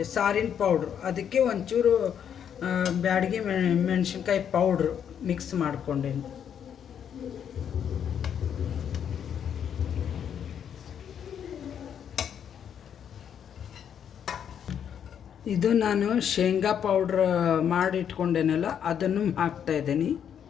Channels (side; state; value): right; quieter; 8.6 dB